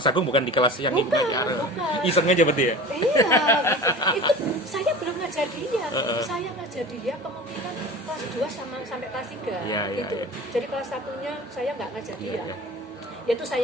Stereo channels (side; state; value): both; normal; correlation 0.36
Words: Agung bukan di kelas yang bukan. Iseng aja berarti ya? Iya, itu saya belum ngajar dia. Saya ngajar dia kemungkinan kelas 2 sampai kelas 3 gitu. Jadi kelas 1-nya saya nggak ngajar dia. Yaitu